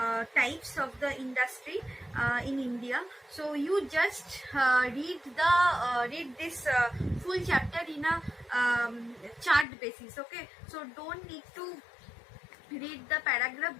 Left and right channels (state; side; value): drops out; right; at 9.7 s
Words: types of the industry in India. So you just read this full chapter in a chart basis. Okay, so don't need to read the paragraph